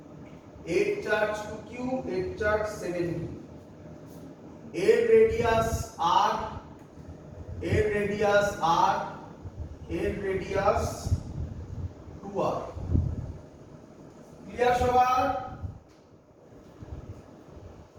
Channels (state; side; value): identical; both; correlation 1.00